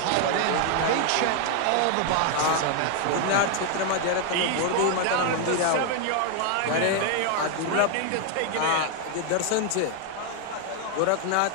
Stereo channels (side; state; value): both; different; correlation 0.00